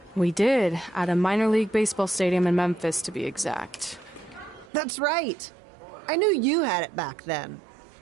We did, at a minor league baseball stadium in Memphis, to be exact. That's right. I knew you had it back then.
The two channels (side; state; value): left; drops out; at 4.7 s